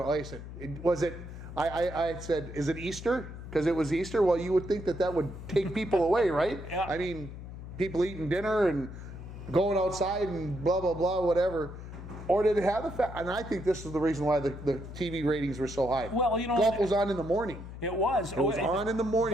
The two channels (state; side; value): noise; left; hum, 11 dB below the sound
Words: Like I said, I said, is it Easter? Because it was Easter. Well, you would think that would take people away, right? Yeah. I mean, people eating dinner and going outside and blah blah blah, whatever. Or did it have the fact? And I think this is the reason why the TV ratings were so high. Well, golf was on in the morning. It was. It was on in the